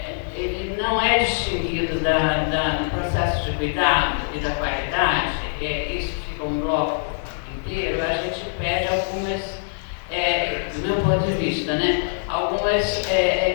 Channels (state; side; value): silent; right; digital silence